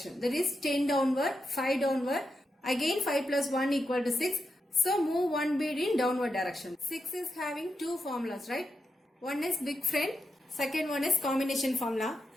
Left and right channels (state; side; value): normal; both; correlation 0.86